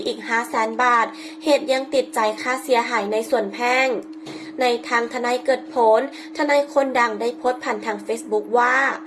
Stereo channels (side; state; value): both; identical; correlation 1.00